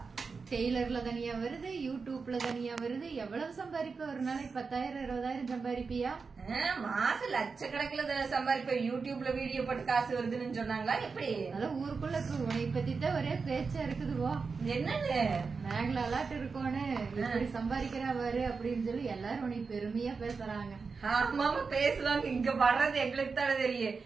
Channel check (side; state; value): left; quieter; 4.8 dB